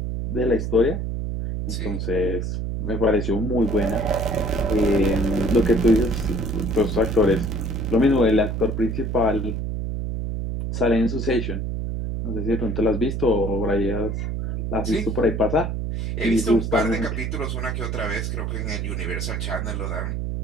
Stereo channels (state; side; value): noise; right; hum, 2 dB below the sound